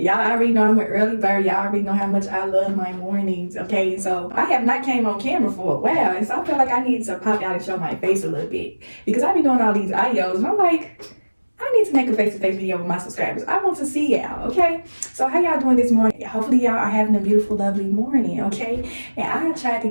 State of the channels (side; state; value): both; inverted; correlation -1.00